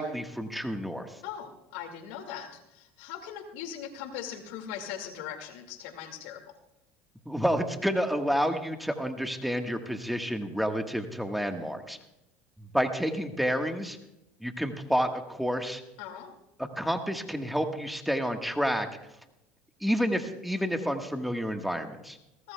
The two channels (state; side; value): normal; both; correlation 0.87